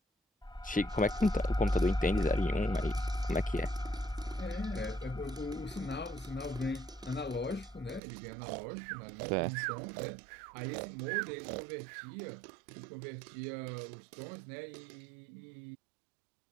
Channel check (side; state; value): left; drops out; at 8.0 s